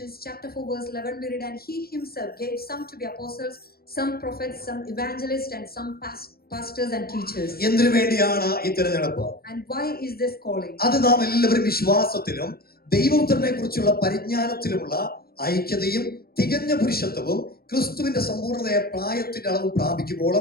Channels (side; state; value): right; late; 0.44 ms